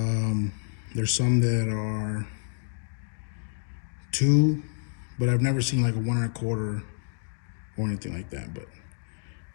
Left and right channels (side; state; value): right; silent; digital silence